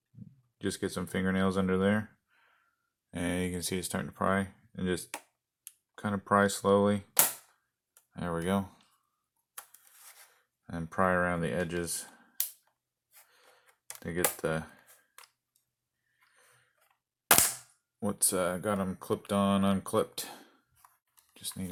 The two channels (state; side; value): identical; both; correlation 1.00